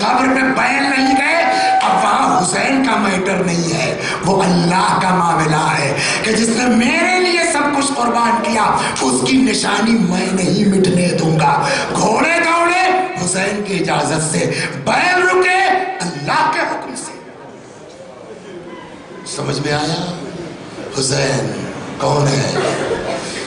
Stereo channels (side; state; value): both; identical; correlation 1.00